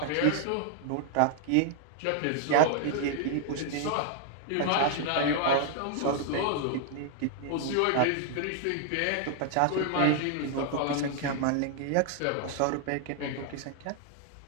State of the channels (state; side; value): different; both; correlation 0.00